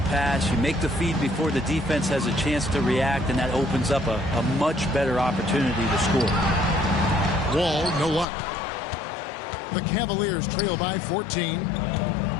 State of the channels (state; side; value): drops out; right; at 8.2 s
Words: pass, you make the feed before the defense has a chance to react, and that opens up a much better opportunity to score. Wall, no luck. The Cavaliers trail by 14.